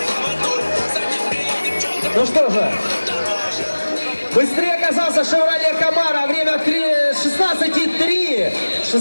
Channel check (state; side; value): inverted; both; correlation -1.00